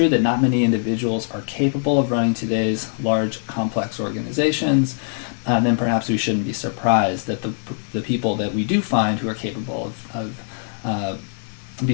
that not many individuals are capable of running today's large, complex organizations, then perhaps we shouldn't be surprised that the people that we do find who are capable of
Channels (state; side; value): silent; right; 64 dB below the other